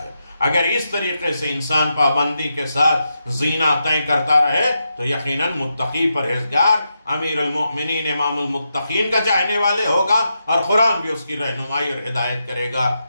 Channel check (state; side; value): inverted; both; correlation -0.85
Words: ہے۔ اگر اس طریقے سے انسان پابندی کے ساتھ زینہ طے کرتا رہے تو یقیناً متقی پرہیزگار امیر المؤمنین امام المتقین کا چاہنے والے ہوگا، اور قرآن بھی اس کی رہنمائی اور ہدایت کرے گا،